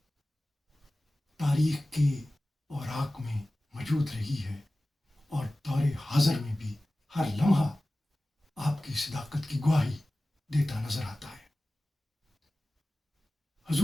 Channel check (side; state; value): both; normal; correlation 0.96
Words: تاریخ کے اوراق میں موجود رہی ہے، اور دور حاضر میں بھی ہر لمحہ آپ کی صداقت کی گواہی دیتا نظر آتا ہے۔